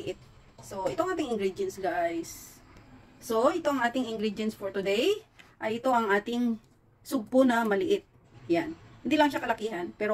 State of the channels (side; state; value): both; identical; correlation 1.00